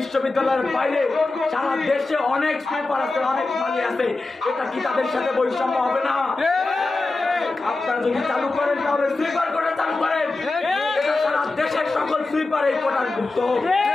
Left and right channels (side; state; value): right; quieter; 3.3 dB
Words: বাইরে সারা দেশে অনেক সুইপার আছে, অনেক মালি আছে, এটা কি তাদের সাথে বৈষম্য হবে না? আপনারা যদি চালু করেন তাহলে সুইপার কোটা চালু করেন, এটা সারা দেশের সকল সুইপার এই কোটার মুক্ত।